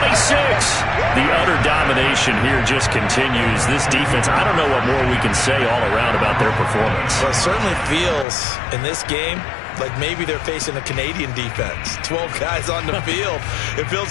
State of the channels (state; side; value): drops out; right; at 8.2 s